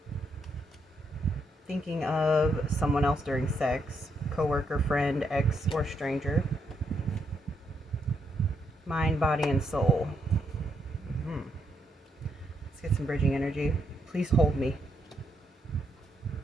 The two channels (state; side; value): normal; both; correlation 0.77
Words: thinking of someone else during sex, coworker, friend, ex, or stranger. Mind, body, and soul. Let's get some bridging energy. Please hold me.